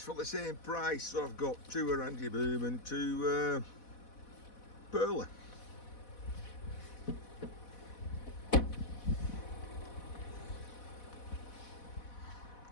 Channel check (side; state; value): right; late; 4.1 ms